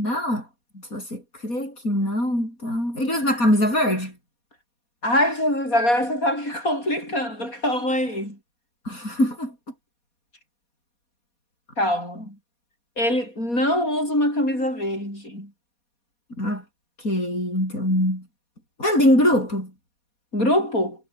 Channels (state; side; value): late; right; 4.2 ms